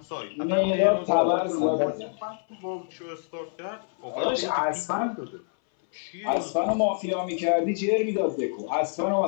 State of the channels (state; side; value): silent; right; 61 dB below the other